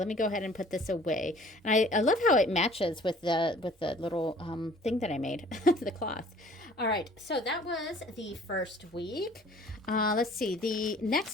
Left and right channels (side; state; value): both; normal; correlation 0.52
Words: me go ahead and put this away. And I love how it matches with the little thing that I made, the cloth. All right, so that was the first week. Let's see, the